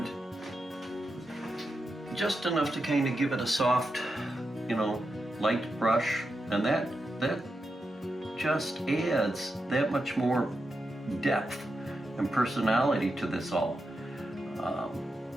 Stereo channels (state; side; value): normal; both; correlation 0.87